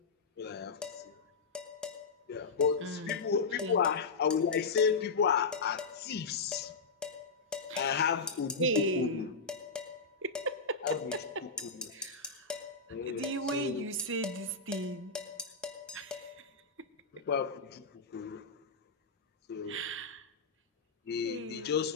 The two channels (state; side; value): quieter; right; 4.3 dB